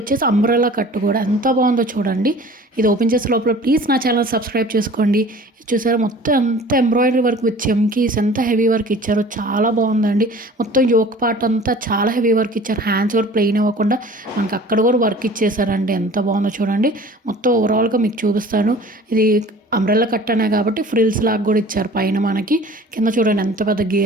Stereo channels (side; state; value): both; normal; correlation 0.45